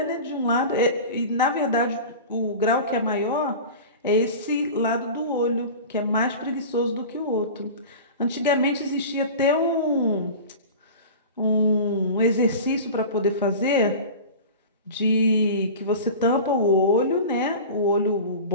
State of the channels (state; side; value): inverted; both; correlation -0.34